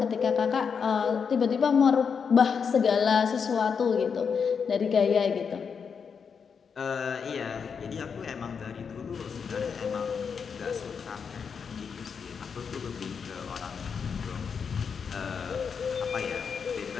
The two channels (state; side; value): quieter; right; 6.3 dB